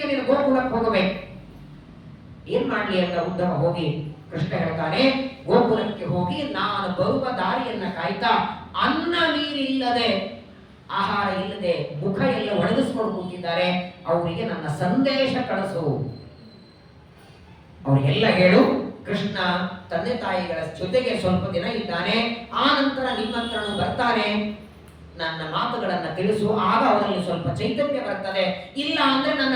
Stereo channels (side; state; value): both; identical; correlation 1.00